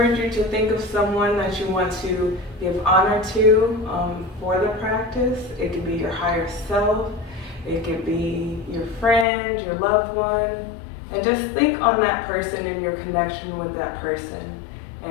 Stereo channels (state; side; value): drops out; right; at 9.2 s